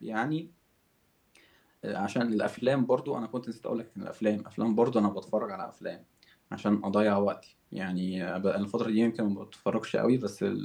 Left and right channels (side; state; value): both; identical; correlation 1.00